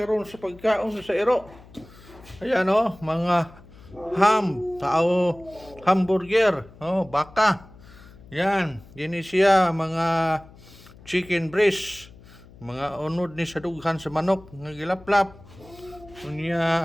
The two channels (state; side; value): noise; left; hum, 22 dB below the sound